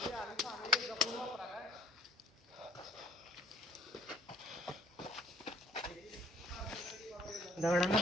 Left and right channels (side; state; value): both; normal; correlation 0.57